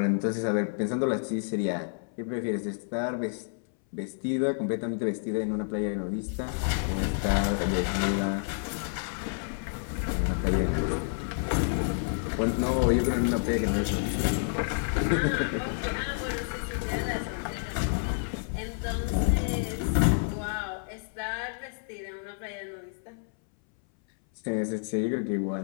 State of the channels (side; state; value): right; silent; 58 dB below the other